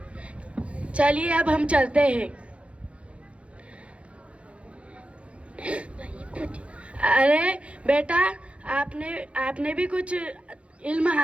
चलिए अब हम चलते हैं। अरे बेटा, आपने भी कुछ इल्म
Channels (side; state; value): left; late; 0.061 ms